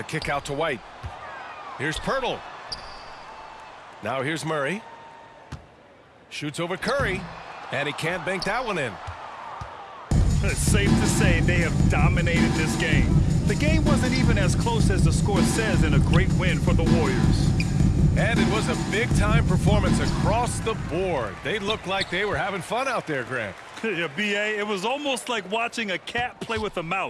kick out to White. Here's Pirtle. Now here's Murray. Shoots over Curry. And he can't bank that one in. It's safe to say they have dominated this game. The game wasn't even as close as the score says in a great win for the Warriors. And it was a big-time performance across the board. They looked like they were having fun out there, Grant. Yeah, B.A., it was almost like watching a cat play with a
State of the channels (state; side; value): identical; both; correlation 1.00